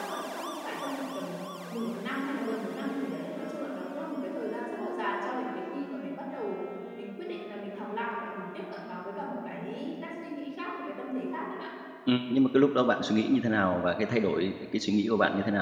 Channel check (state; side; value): identical; both; correlation 1.00